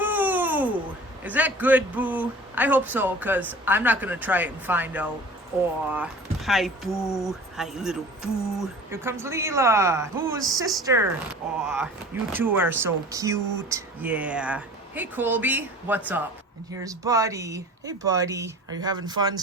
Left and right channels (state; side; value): normal; both; correlation 0.42